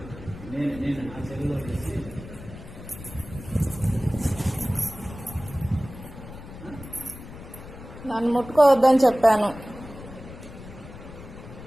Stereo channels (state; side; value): noise; left; rumble, 14 dB below the sound